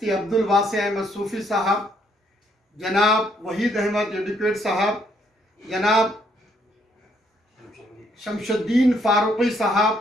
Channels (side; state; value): both; normal; correlation 0.70